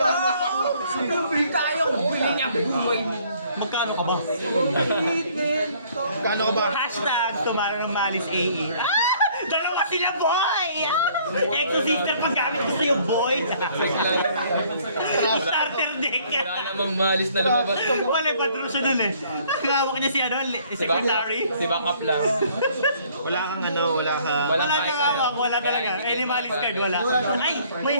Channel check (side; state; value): both; inverted; correlation -0.60